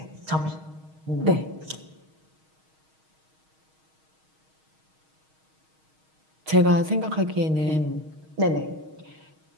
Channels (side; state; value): left; late; 6.4 ms